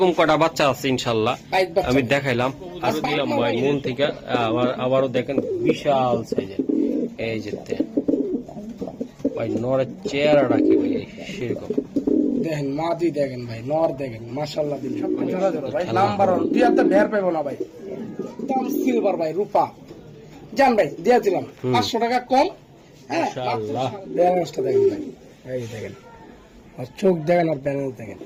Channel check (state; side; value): identical; both; correlation 1.00